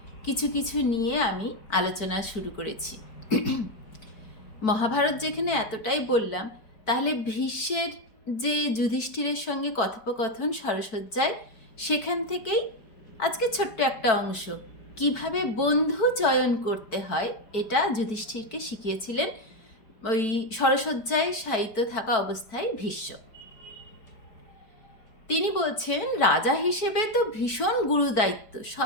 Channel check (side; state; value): right; late; 4.6 ms